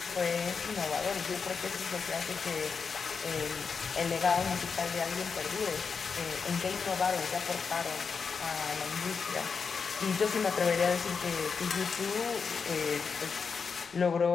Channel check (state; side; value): quieter; right; 5.6 dB